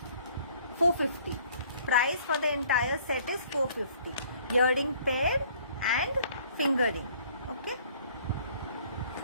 450. Price for the entire set is 450. Earring pair and fingering. Okay.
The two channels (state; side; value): inverted; both; correlation -0.57